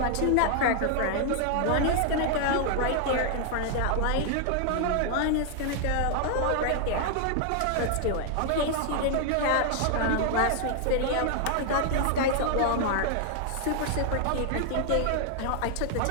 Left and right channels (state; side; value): different; both; correlation 0.00